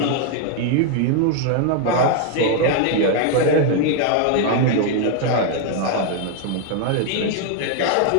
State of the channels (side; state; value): both; different; correlation 0.00